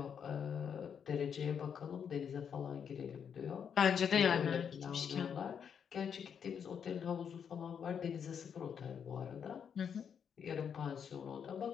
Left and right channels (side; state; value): right; quieter; 7.5 dB